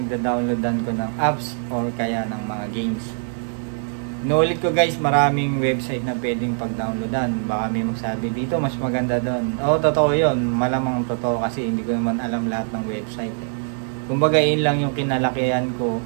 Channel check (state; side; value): silent; left; 62 dB below the other